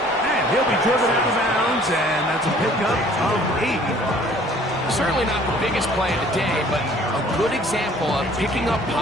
And he'll be driven out of bounds, and that's a pickup of 80. Certainly not the biggest play of the day, but a good example of picking up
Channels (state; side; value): normal; both; correlation 0.54